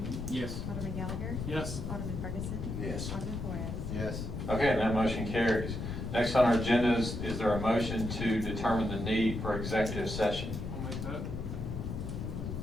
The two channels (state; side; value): noise; left; rumble, 5 dB below the sound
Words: Yes. Alderman Gallagher. Yes. Alderman Ferguson. Yes. Alderman Flores. Yes. Okay, and that motion carries. Next on our agenda is there a motion to determine the need for executive session? I'll make that.